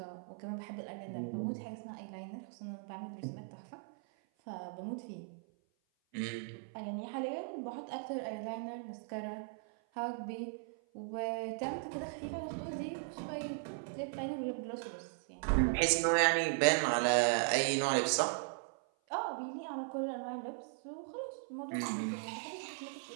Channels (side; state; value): left; silent; 52 dB below the other